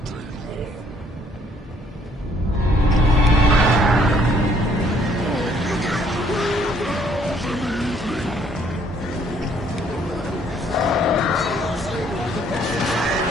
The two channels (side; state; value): both; normal; correlation 0.64